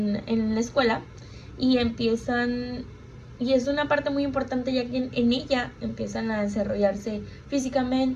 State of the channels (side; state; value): both; identical; correlation 1.00